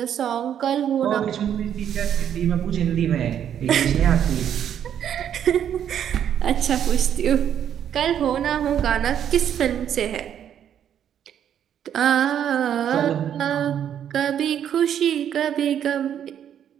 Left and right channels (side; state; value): left; quieter; 9.5 dB